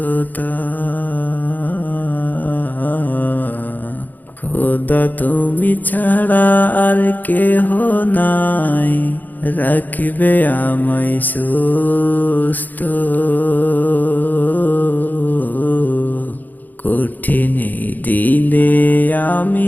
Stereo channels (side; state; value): right; late; 0.084 ms